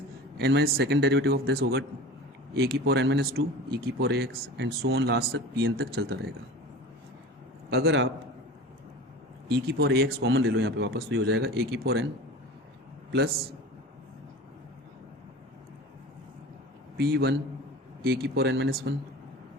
N minus second derivative of this होगा ए की पावर एन माइनस टू ई की power A X, and so on last तक पी एन तक चलता रहेगा। अगर आप ई की पावर ए एक्स कॉमन ले लो यहाँ पे वापस, तो ये हो जाएगा ए की power N plus P1 A की power N minus one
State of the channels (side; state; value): both; normal; correlation 0.36